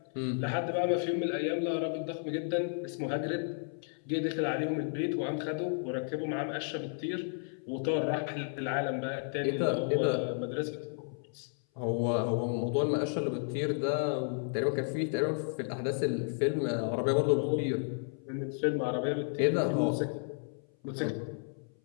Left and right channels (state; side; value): silent; right; 56 dB below the other